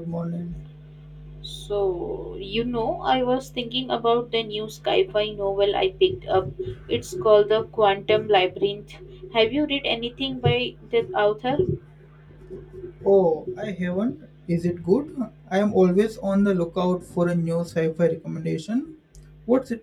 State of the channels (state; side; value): identical; both; correlation 1.00